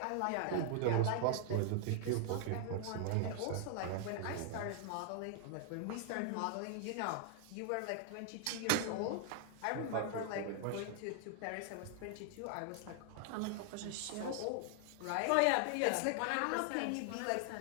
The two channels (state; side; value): different; both; correlation 0.00